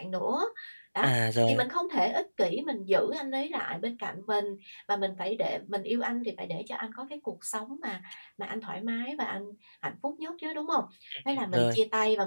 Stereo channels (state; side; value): inverted; both; correlation -1.00